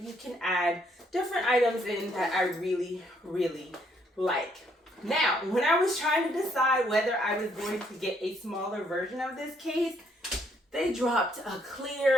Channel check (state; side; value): normal; both; correlation 0.69